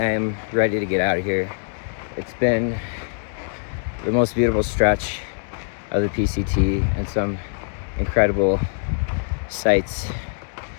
am ready to get out of here. It's been the most beautiful stretch of the PCT and some incredible sights.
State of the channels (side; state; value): right; silent; 63 dB below the other